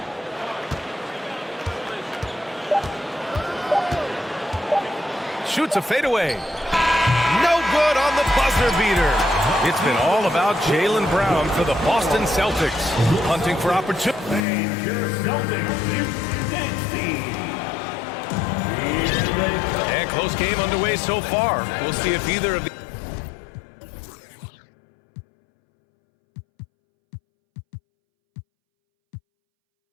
Shoots a fadeaway. No good on the buzzer beater. It's been all about Jaylen Brown for the Boston Celtics. Hunting for opportunity. And close game underway so far. We'll see if either of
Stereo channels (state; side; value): drops out; right; at 14.5 s